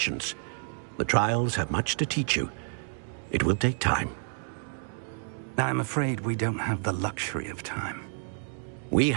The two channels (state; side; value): silent; left; 58 dB below the other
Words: The trials have much to teach you. It will take time. I'm afraid we don't have the luxury of time. We